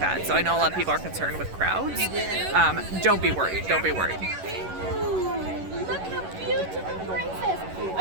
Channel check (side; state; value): left; late; 11 ms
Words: So I know a lot of people are concerned with crowds. Don't be worried. Don't be worried. Ooh, look how beautiful, princess.